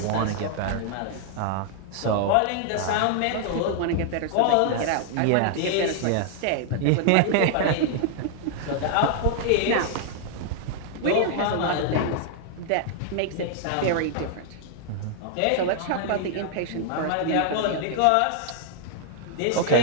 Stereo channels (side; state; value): both; different; correlation -0.01